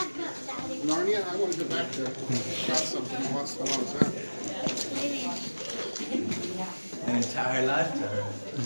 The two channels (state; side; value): inverted; both; correlation -1.00